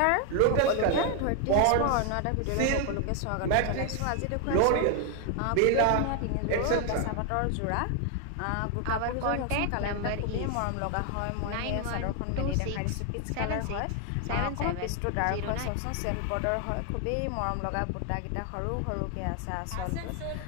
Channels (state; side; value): different; both; correlation 0.00